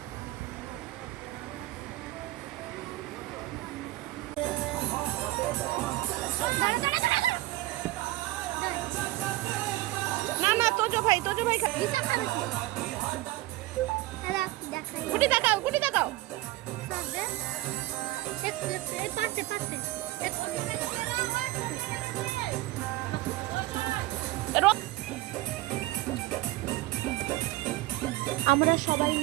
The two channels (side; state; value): left; quieter; 17.8 dB